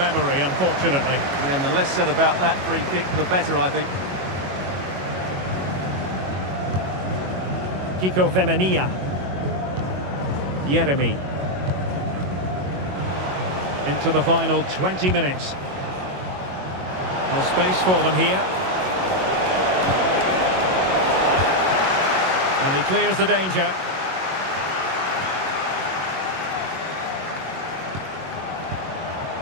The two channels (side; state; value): left; late; 22 ms